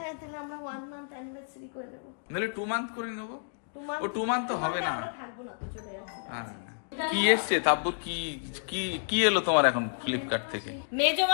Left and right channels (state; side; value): silent; right; digital silence